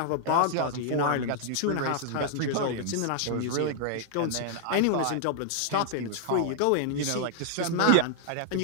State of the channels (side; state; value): both; different; correlation -0.01